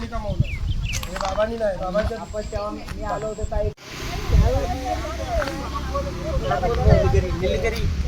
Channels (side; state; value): both; identical; correlation 1.00